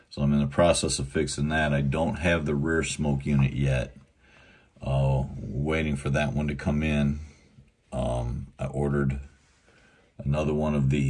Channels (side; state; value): both; identical; correlation 1.00